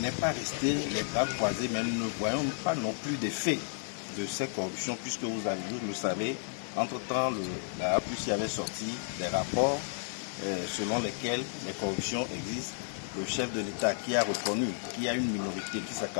pas resté les bras croisés, mais nous ne voyons pas non plus d'effet de ces corruptions, puisque vous le savez, entre-temps, la APUSI avait sorti des rapports selon lesquels les corruptions existent. Le chef de l'État qui a reconnu qu'il y a une minorité qui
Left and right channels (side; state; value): right; silent; 56 dB below the other